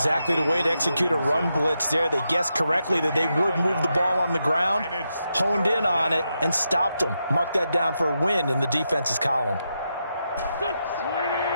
the way to execute a run blitz there. They guessed correctly that they would move the ball on the ground, honed in on it, and stopped them. Mark that down for a win in the defense's column.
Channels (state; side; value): inverted; both; correlation -0.85